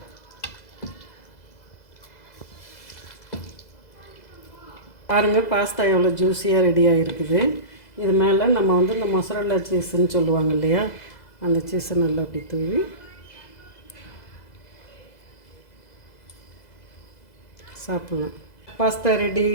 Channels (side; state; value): right; late; 2.0 ms